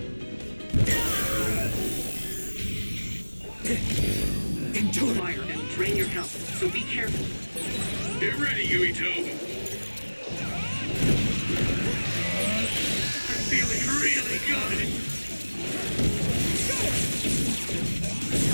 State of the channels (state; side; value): inverted; both; correlation -1.00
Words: fire and drain your health, so be careful. Get ready, Yuito. I'm feeling really good.